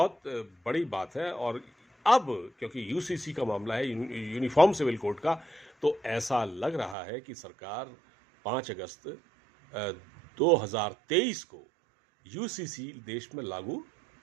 बड़ी बात है। और अब क्योंकि यूसीसी का मामला है, यूनिफॉर्म सिविल कोड का, तो ऐसा लग रहा है कि सरकार 5 अगस्त 2023 को यूसीसी देश में लागू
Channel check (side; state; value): left; drops out; at 7.0 s